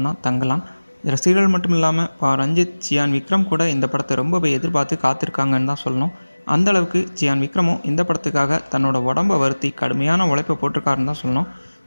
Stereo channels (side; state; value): both; inverted; correlation -1.00